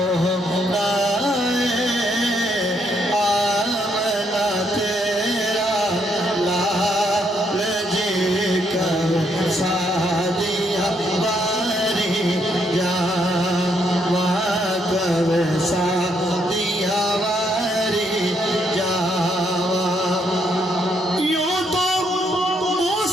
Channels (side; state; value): both; normal; correlation 0.74